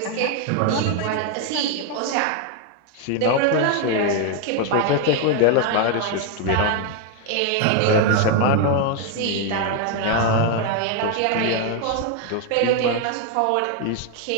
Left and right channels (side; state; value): both; different; correlation 0.01